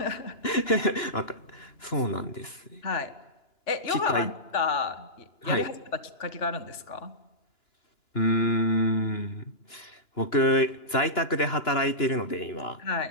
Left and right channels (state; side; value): late; right; 2.9 ms